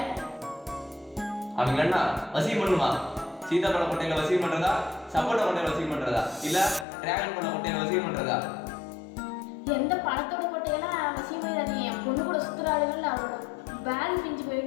அவங்க என்ன வசியம் பண்ணுமா? சீதாப்பழ கொட்டையில வசியம் பண்றதா, சப்போட்டா கொட்டையில வசியம் பண்றதா, இல்ல டிராகன் பழ கொட்டையில வசியம் பண்றதா? எந்த பழத்தோட கொட்டையெல்லாம் அவசியம் இல்லை. என் பொண்ணு கூட சுற்றுலாடுகள் அவளோட பேக் பிஞ்சு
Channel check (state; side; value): drops out; right; at 6.9 s